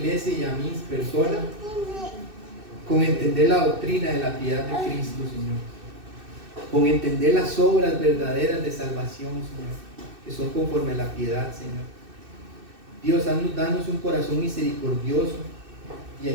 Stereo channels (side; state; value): left; late; 2.6 ms